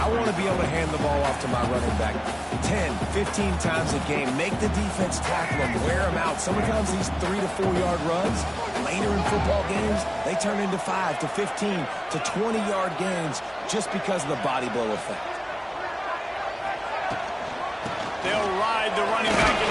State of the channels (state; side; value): identical; both; correlation 1.00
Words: want to be able to hand the ball off to my running back 10, 15 times a game. Make the defense tackle him, wear him out. Sometimes these 3 to 4 yard runs, later in football games, they turn into 5 to 15 to 20 yard gains just because of the body blow effect. They'll ride the running back and